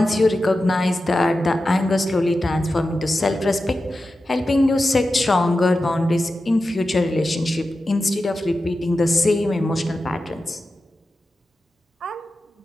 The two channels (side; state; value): both; normal; correlation 0.92